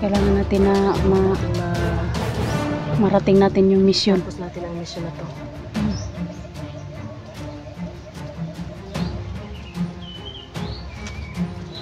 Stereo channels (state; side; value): identical; both; correlation 1.00